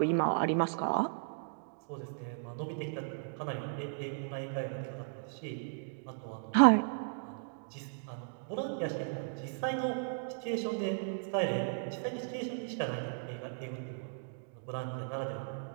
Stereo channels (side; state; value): left; silent; digital silence